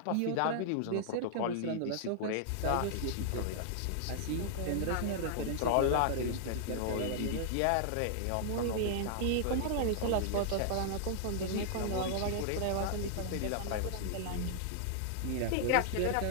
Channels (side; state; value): both; different; correlation -0.01